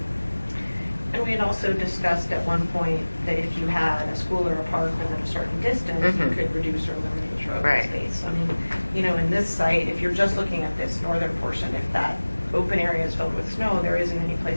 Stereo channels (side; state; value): both; inverted; correlation -1.00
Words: And we had also discussed at one point that if you had a school or a park within a certain distance, you Mhm. could reduce or eliminate your open Right. space. I mean, in this site, if you're just looking at this northern portion, if that open area is filled with snow, there isn't any